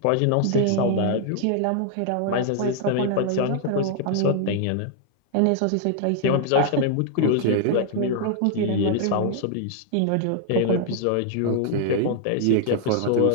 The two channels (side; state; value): both; different; correlation 0.00